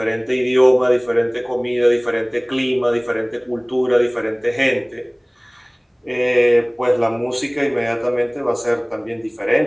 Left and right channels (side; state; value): both; identical; correlation 1.00